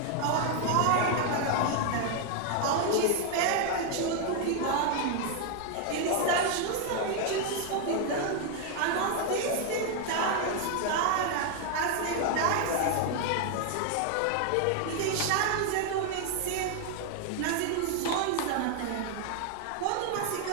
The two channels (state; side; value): different; both; correlation 0.00